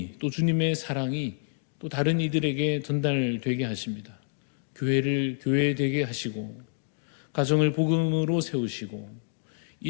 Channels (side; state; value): right; silent; digital silence